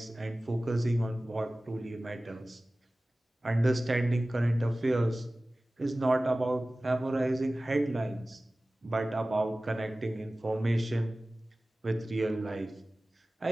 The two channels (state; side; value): normal; both; correlation 0.97